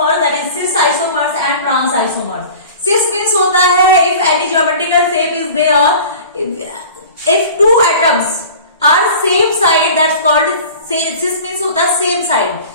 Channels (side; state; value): both; inverted; correlation -0.41